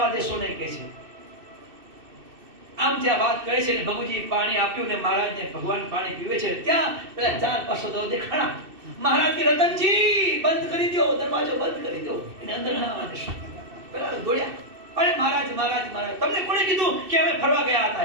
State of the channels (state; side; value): late; left; 2.6 ms